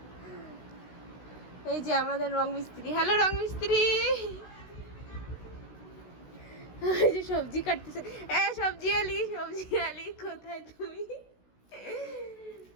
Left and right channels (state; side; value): late; right; 16 ms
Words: এই যে আমাদের রং মিস্ত্রি। হ্যালো রং মিস্ত্রি। এই যে সবজি কাটতেছে। সবজি আলি কোথায় তুমি?